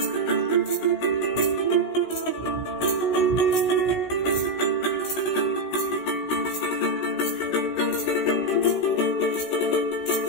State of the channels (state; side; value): late; right; 16 ms